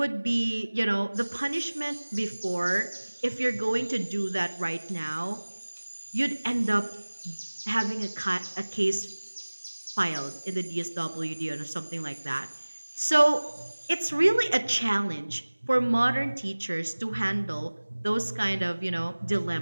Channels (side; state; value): both; inverted; correlation -1.00